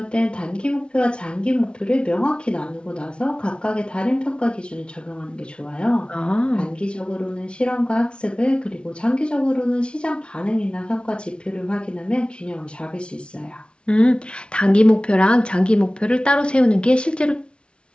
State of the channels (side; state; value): right; late; 0.057 ms